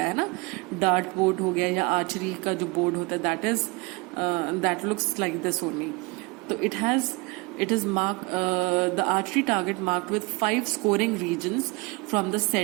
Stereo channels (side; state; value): left; quieter; 26.4 dB